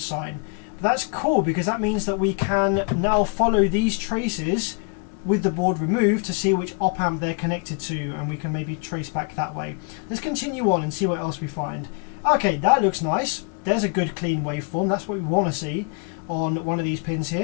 But that's cool, because that means that we can now follow these traces with the board removed to see which op amp they're connected to, and we can maybe trace back that way. Let's continue on and see what else we find. Okay, that looks nice. There's a good clean waveform. That's what we want to see on one of these pins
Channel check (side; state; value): right; quieter; 37.3 dB